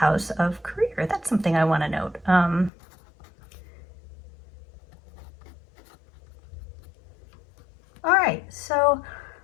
of career. That's something I want to note. All right, so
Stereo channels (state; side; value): drops out; right; at 2.7 s